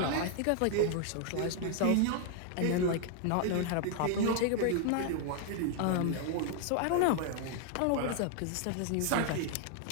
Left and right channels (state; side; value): different; both; correlation 0.00